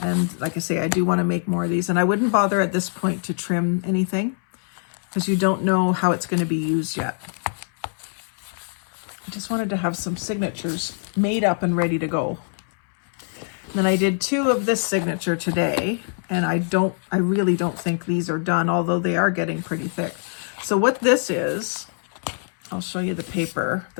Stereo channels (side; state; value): right; silent; 63 dB below the other